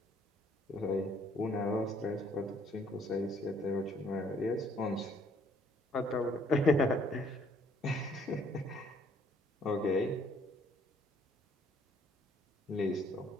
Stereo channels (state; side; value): normal; both; correlation 0.64